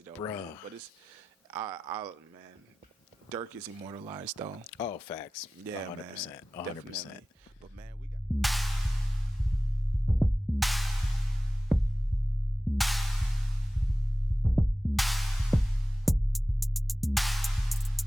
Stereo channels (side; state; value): both; normal; correlation 0.96